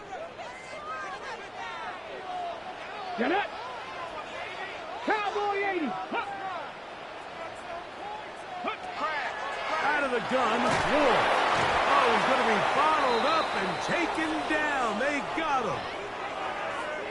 Get it. Cowboy 80. Out of the gun, Ward. Oh, he's going to be bottled up and taken down. They got him.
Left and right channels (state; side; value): identical; both; correlation 1.00